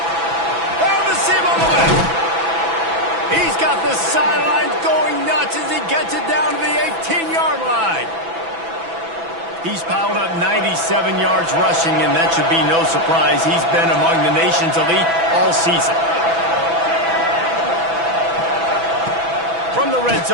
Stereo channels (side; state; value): left; late; 6.0 ms